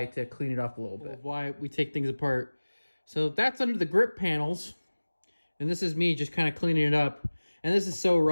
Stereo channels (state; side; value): inverted; both; correlation -1.00